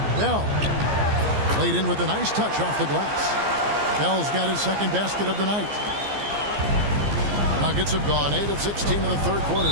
Bell laid in with a nice touch off the glass. Bell's got his second basket of the night. Nuggets have gone 8 of 16 in the third quarter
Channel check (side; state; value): left; late; 14 ms